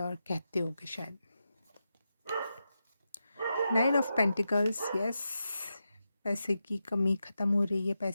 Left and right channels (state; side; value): inverted; both; correlation -0.89